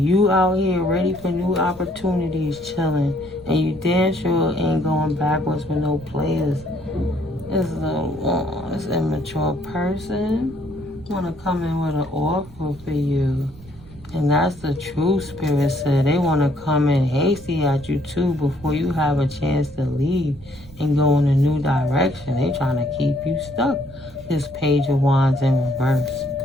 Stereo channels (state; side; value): noise; right; rumble, 20 dB below the sound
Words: out here ready for new opportunities, chilling. And you damn sure ain't going backwards with no players. This immature person want to come in with an offer for you. And that's the true spirit said. They want to come in hasty at you too before you have a chance to leave and go in a new direction. They trying to keep you stuck. This Page of Wands in reverse.